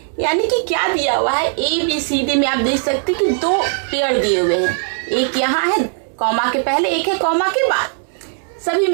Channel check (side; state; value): left; silent; digital silence